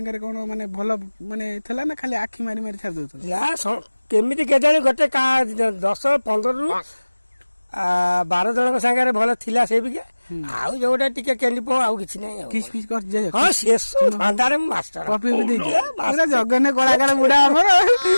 କଣ ମାନେ ଭଲ ମାନେ ଥିଲା ନା ଖାଲି ଆଖି ମାରି ମାରି ଛାଡି ଦଉଥିଲା କେମିତି କେଜାଣି ଗୋଟେ 10-15ରୁ 12 ଜଣଙ୍କ ସାଙ୍ଗରେ ଭଲ ଥିଲା ସେ ବିକା ଆଉ ଯୋଉଟା ଟିକେ କେଣ୍ଡି ଆଉ କିଛି ନାହିଁ କିସ୍ ପିସ୍ କରି ଯାଏ ହଁ ଶେଷ ଫାଣ୍ଡାରେ ମୁଁ ମାଷ୍ଟର କପି ବି ଦେଇଛି ପୁରା ଜଗନ୍ନେ କଳାକାର ବୁଢା ଆମର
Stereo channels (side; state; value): both; inverted; correlation -1.00